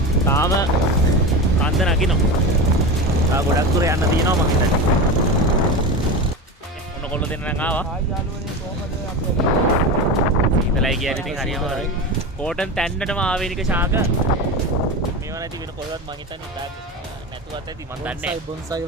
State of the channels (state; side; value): normal; both; correlation 0.24